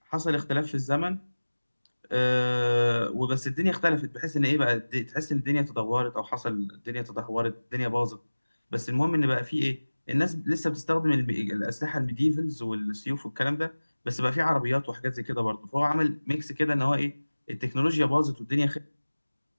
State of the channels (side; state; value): both; inverted; correlation -1.00